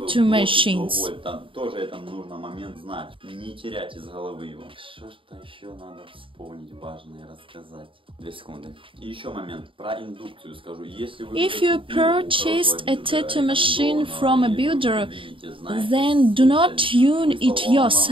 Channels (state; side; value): late; left; 0.25 ms